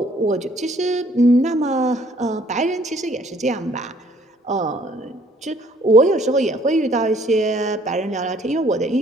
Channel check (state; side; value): normal; both; correlation 0.61